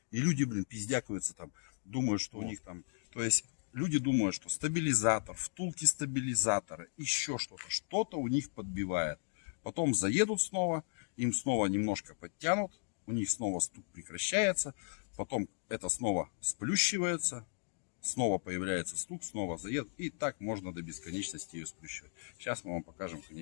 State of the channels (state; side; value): silent; right; digital silence